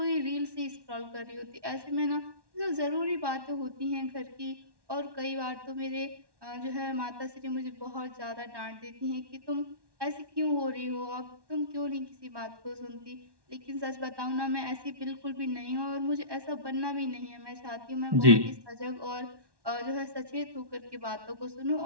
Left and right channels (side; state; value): left; late; 1.1 ms